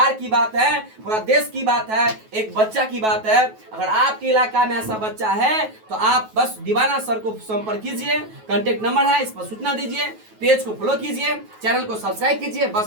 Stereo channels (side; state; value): left; late; 9.3 ms